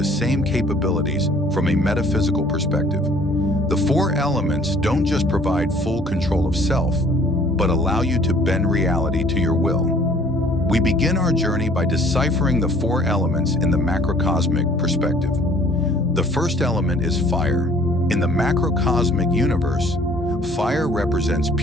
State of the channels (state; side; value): normal; both; correlation 0.55